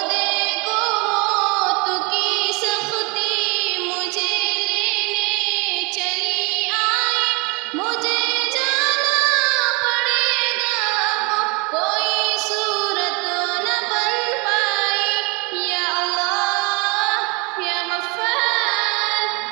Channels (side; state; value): left; quieter; 28.9 dB